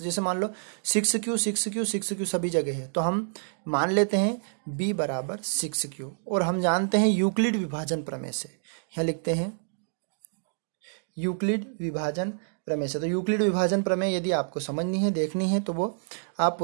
जैसे मान लो 6q सभी जगह है, तो हम मान लेते हैं b बराबर 6q, और हम जानते हैं यूक्लिड विभाजन प्रमेय से, यहाँ लिखते हैं यूक्लिड विभाजन प्रमेय से। तो यूक्लिड विभाजन प्रमेय यदि आपको समझनी है, देखनी है, तो वो आप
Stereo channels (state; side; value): silent; left; digital silence